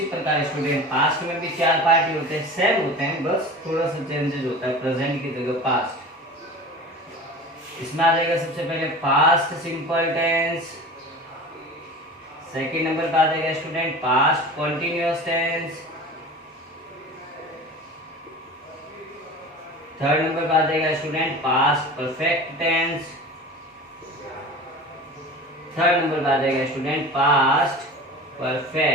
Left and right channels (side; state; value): both; normal; correlation 0.36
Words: प्रकार स्टूडेंट पास्ट में भी 4 पार्ट ही होते हैं, सेम होते हैं, बस थोड़ा सा चेंजेस होता है। प्रेजेंट की जगह पास्ट, इसमें आ जाएगा सबसे पहले past simple tense. Second number पे आ जाएगा student past continuous tense. Third number पे आ जाएगा student past perfect tense. Third number पे आ जाएगा student past